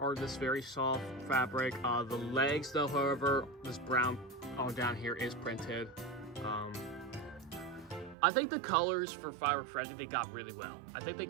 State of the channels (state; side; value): drops out; left; at 8.2 s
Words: this very soft fabric. The legs, though, however, this brown on down here is printed. I think the colors for Firework Freddy, they got really well. I think they